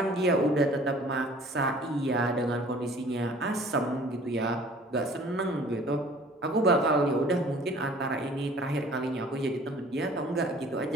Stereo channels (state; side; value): normal; both; correlation 0.51